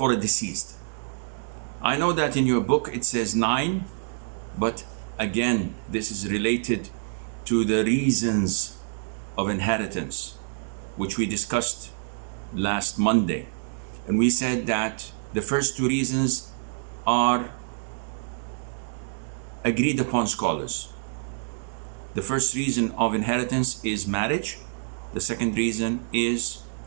a deceased. I know that in your book it says 9, but again, this is related to the reasons of inheritance, which we discussed last Monday. And we said that the first two reasons are agreed upon scholars. The first reason of inheritance is marriage. The second reason is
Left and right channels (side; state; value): left; silent; 60 dB below the other